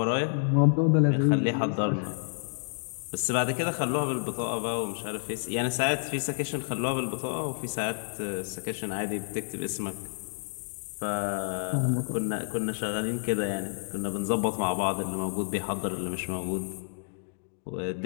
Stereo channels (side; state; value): right; silent; digital silence